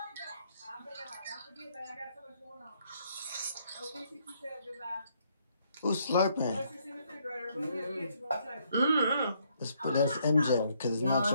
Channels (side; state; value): both; inverted; correlation -0.71